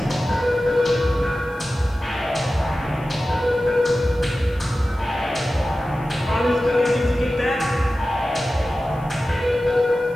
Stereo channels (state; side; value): noise; left; hiss, 30 dB below the sound